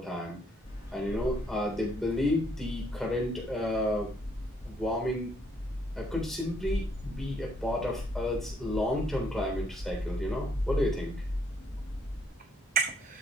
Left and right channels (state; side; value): normal; both; correlation 0.69